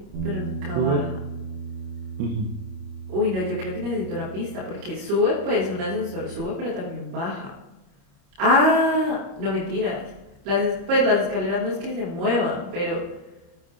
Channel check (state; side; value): late; left; 29 ms